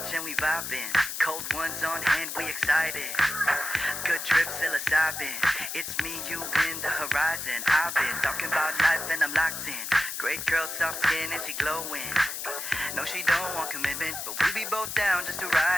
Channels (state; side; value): noise; left; hiss, 5 dB below the sound